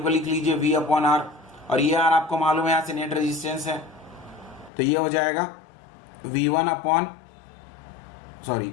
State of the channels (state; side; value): drops out; right; at 4.7 s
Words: को लिख लीजिए V अपॉन R, और ये R आपको मालूम है यहाँ से नेट रेजिस्टेंस है, तो ये हो जाएगा V1 अपॉन, सॉरी